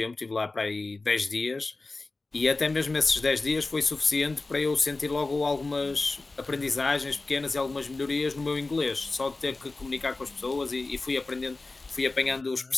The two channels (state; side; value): quieter; right; 3.4 dB